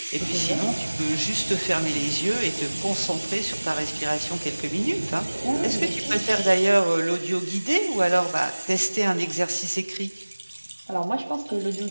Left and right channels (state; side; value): inverted; both; correlation -1.00